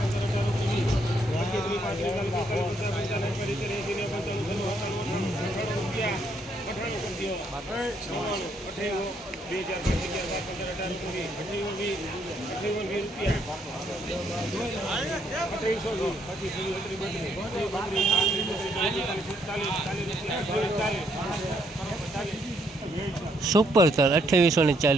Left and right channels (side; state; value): both; normal; correlation 0.72